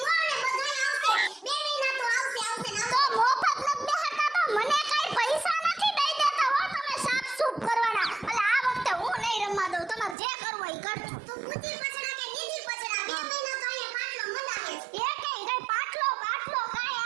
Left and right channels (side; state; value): left; drops out; at 10.2 s